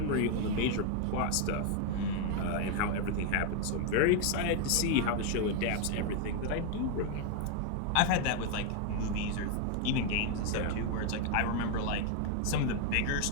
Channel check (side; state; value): both; different; correlation 0.01